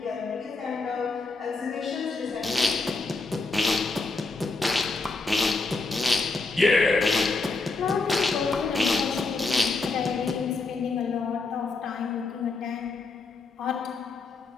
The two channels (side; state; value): right; quieter; 3.7 dB